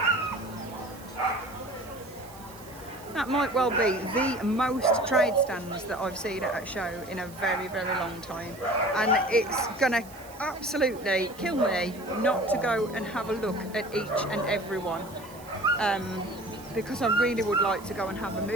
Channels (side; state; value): right; noise; hiss, 21 dB below the sound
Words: That might well be the most trade stands that I've seen at a show in a very, very long time. And it's gonna absolutely kill me not to go and have a look at each and every one. Because I really would like to go and have a